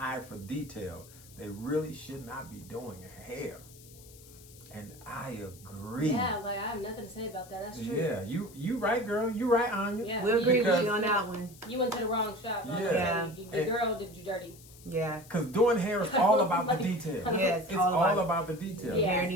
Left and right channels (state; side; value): noise; left; hiss, 21 dB below the sound